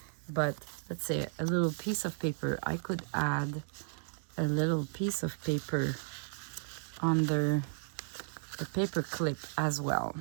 but let's say a little piece of paper. I could add a little piece of paper under the paper clip as well.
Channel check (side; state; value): left; silent; digital silence